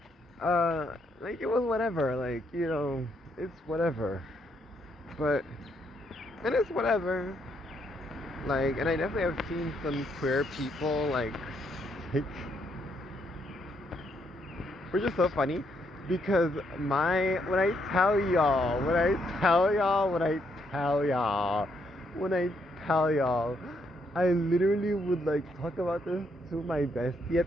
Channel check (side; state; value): both; normal; correlation 0.75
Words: like it was whatever. Like, you know, it's whatever. But, and it's whatever. Like, and I definitely have seen some queer people, like which is so funny because when I tell y'all, I literally would like talk about this to my bestie